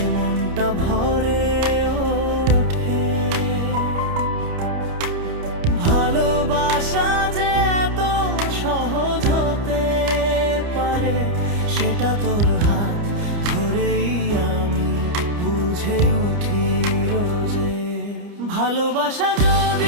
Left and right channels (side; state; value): left; late; 29 ms